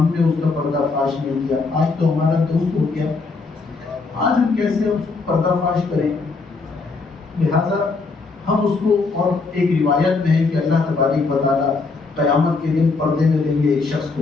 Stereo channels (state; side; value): quieter; right; 4.1 dB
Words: نے اس کا پردہ فاش نہیں کیا، آج تو ہمارا دوست ہو گیا، آج ہم کیسے اس کو پردہ فاش کریں؟ لہٰذا ہم اس کو، اور ایک روایت میں ہے کہ اللہ تبارک و تعالیٰ قیامت کے دن پردے میں لیں گے ایک شخص